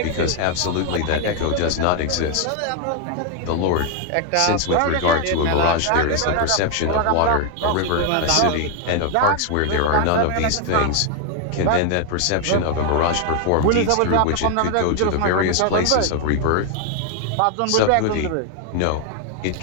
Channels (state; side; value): different; both; correlation 0.01